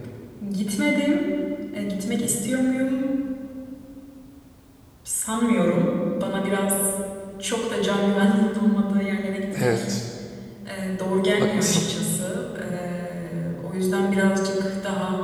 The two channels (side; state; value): both; identical; correlation 1.00